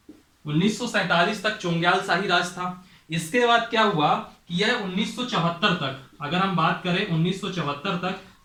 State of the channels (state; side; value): identical; both; correlation 1.00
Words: 1947 तक चोंग्याल शाही राज था। इसके बाद क्या हुआ कि यह 1974 तक, अगर हम बात करें 1974 तक,